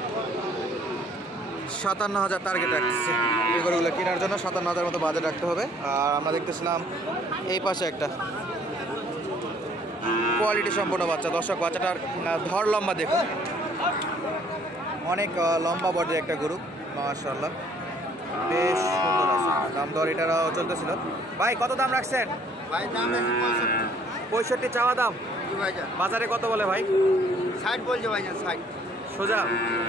57,000 টার্গেট রাখতেছে এই গরুগুলো কেনার জন্য। 57,000 মতো বাজেট রাখতে হবে। আর আমরা দেখতেছিলাম এই পাশে একটা কোয়ালিটি সম্পূর্ণ বাচ্চা। দর্শক, বাচ্চাটার ধর লম্বা দেখুন, অনেক লম্বা বডির একটা গরু, মাশাআল্লাহ, বেশ সুন্দর আছে। দাম দর এটারও চলতেছিল। ভাই কত দাম রাখছেন? ভাই দাম আছে 65 চাওয়া দাম। বাজারে কত বলে ভাই? 60 বলছে ভাই, 60 সোজা।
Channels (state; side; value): normal; both; correlation 0.60